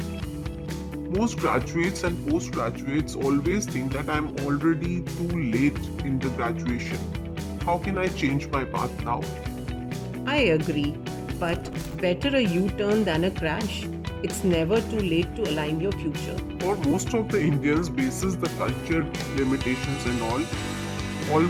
Most graduates and postgraduates always think that I'm already too late in the graduation. How can I change my path now? I agree, but better a U-turn than a crash. It's never too late to align your future. For most of the Indians basis the culture limitations and all,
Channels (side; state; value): both; identical; correlation 1.00